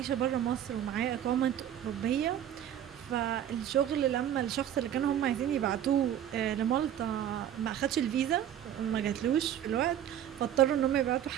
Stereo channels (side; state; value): left; quieter; 10.5 dB